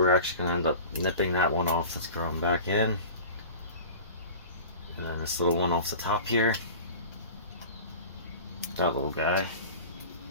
actually going to end up nipping that one off that's growing back in. And then this little one off the top here. That little guy.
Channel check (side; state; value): both; inverted; correlation -0.37